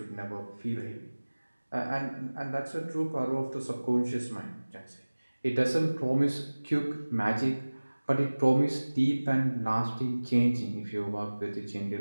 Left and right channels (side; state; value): both; inverted; correlation -1.00